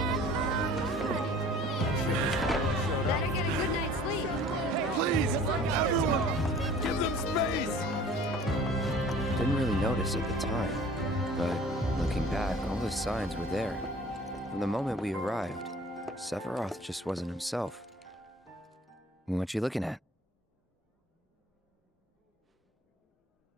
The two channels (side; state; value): both; normal; correlation 0.48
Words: Better get a good night's sleep. Please, everyone, give them space! Didn't really notice at the time, but looking back, all the signs were there. From the moment we arrived, Sephiroth just wasn't himself. What you looking at?